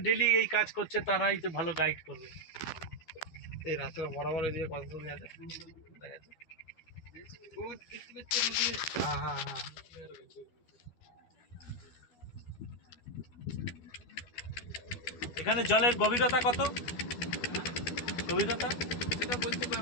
ডেলি এই কাজ করছে তারাই তো ভালো গাইড করবে। এই রাস্তাটা বরাবর এদিকে কত জমি আছে দেখা যাচ্ছে। হ্যাঁ হ্যাঁ হ্যাঁ। এখানে জলের গভীরতা কত? গভীরতা সেটা বলতে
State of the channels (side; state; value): right; late; 12 ms